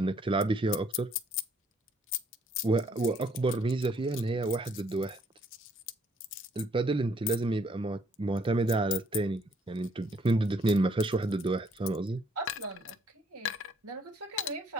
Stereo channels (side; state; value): both; normal; correlation 0.66